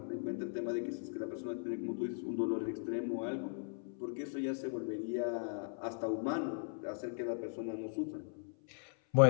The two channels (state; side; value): silent; right; 52 dB below the other